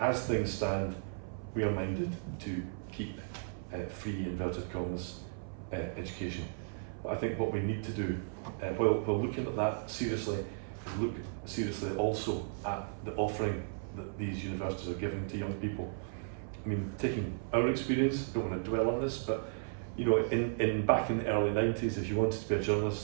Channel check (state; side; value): silent; left; 55 dB below the other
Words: things stand, we are minded to keep free, inverted commas, education. But I think what we need to do, while looking at that seriously, is look seriously also at the offering that these universities are giving to young people. I mean, taking our experience, don't want to dwell on this, but in back in the early 90s, if you wanted to be a